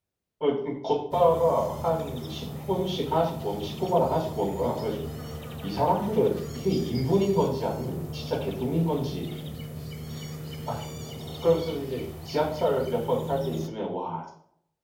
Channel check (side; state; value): both; identical; correlation 1.00